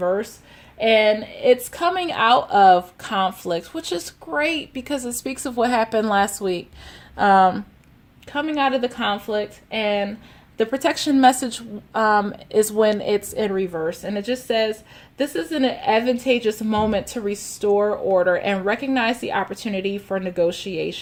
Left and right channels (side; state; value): both; identical; correlation 1.00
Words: and it's coming out of conflict, which is great because it speaks of what happened last week. Coming out of the conflict, and the protection message is when it's in reverse, and it just says, this is an advantageous moment to restore order and recognize the opportunity for